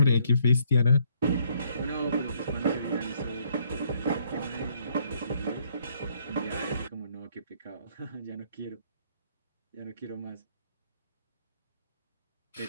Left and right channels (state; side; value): inverted; both; correlation -0.68